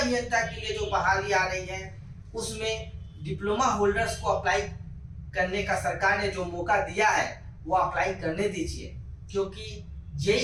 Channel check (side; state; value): both; identical; correlation 1.00